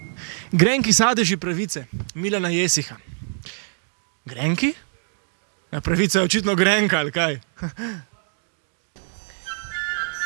Grenki sadeži pravice, Milana Jesiha. Grenki? Ja, pravica je očitno grenka, ali kaj?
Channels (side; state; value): left; silent; 58 dB below the other